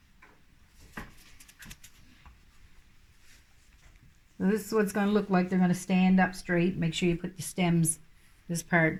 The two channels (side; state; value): both; identical; correlation 1.00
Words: So this is what it's going to look like. They're going to stand up straight. Make sure you put the stems, this part,